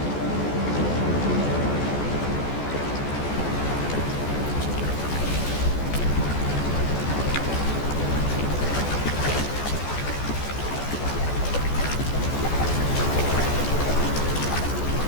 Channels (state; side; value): late; right; 14 ms